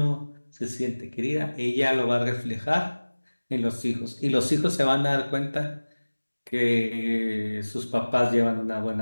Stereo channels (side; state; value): both; inverted; correlation -1.00